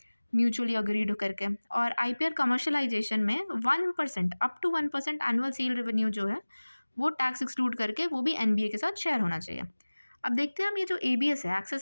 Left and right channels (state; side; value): inverted; both; correlation -1.00